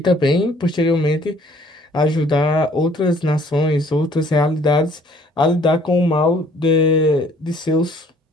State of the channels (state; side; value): normal; both; correlation 0.58